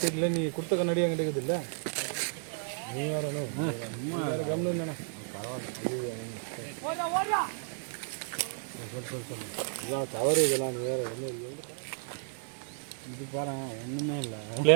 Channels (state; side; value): silent; left; digital silence